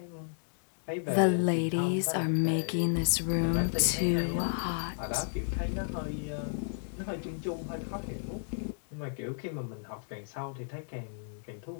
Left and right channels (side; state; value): right; silent; digital silence